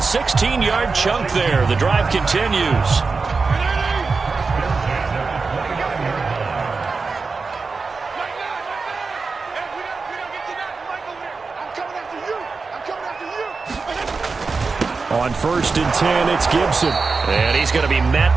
chunk there. The drive continues. On 1st and 10, it's Gibson. And he's going to be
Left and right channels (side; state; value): left; quieter; 4.4 dB